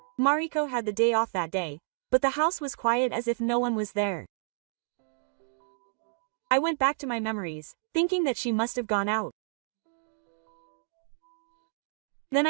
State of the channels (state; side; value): silent; left; digital silence